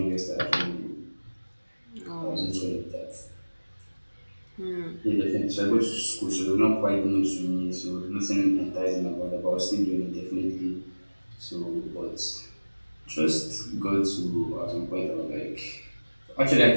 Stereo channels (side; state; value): both; inverted; correlation -1.00